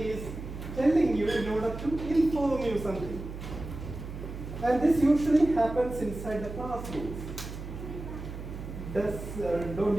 is telling you in order to inform you something. And this usually happens inside the classrooms. Don't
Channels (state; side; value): noise; right; hum, 9 dB below the sound